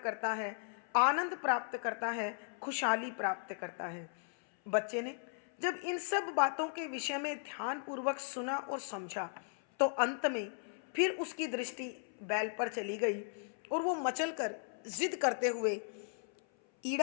है, आनंद प्राप्त करता है, खुशहाली प्राप्त करता है। बच्चे ने जब इन सब बातों के विषय में ध्यानपूर्वक सुना और समझा तो अंत में फिर उसकी दृष्टि बैल पर चली गई और वो मचलकर जिद करते हुए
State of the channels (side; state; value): right; silent; 53 dB below the other